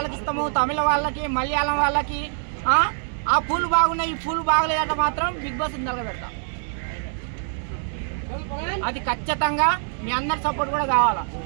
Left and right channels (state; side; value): silent; left; 62 dB below the other